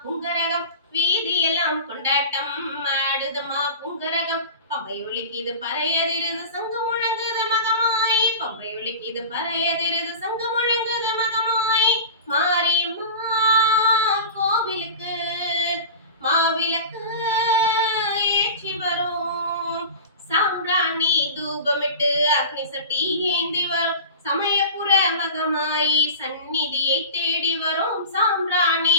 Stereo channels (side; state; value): both; inverted; correlation -0.34